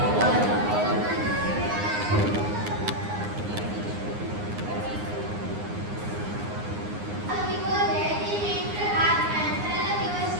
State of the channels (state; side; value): late; left; 9.7 ms